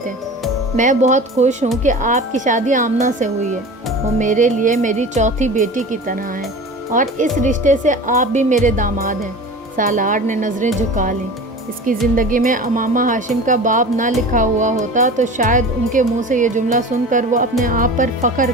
میں بہت خوش ہوں کہ آپ کی شادی آمنہ سے ہوئی ہے، وہ میرے لیے میری چوتھی بیٹی کی طرح ہے، اور اس رشتے سے آپ بھی میرے داماد ہیں۔ سالار نے نظریں جھکا لیں۔ اس کی زندگی میں امامہ ہاشم کا باب نہ لکھا ہوا ہوتا تو شاید ان کے منہ سے یہ جملہ سن کر وہ اپنے آپ پر فخر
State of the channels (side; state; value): both; normal; correlation 0.36